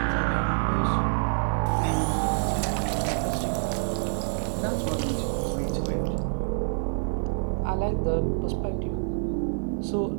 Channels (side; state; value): left; silent; 60 dB below the other